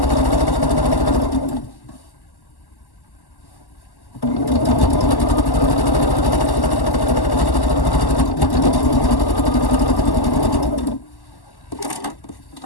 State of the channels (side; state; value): right; late; 1.1 ms